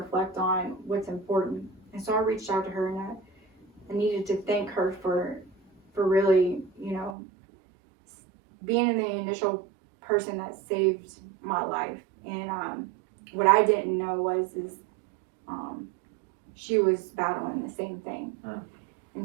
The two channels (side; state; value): left; drops out; at 7.2 s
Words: on what's important. And so I reached out to her, and I needed to thank her for really, being the initial person that saved my life. And what I didn't know is she was battling the same thing.